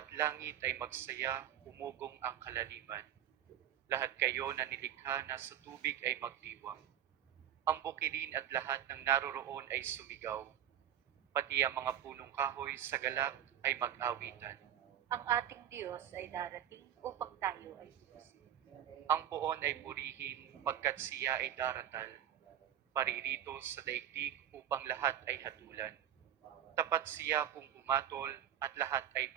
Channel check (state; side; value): quieter; left; 10.8 dB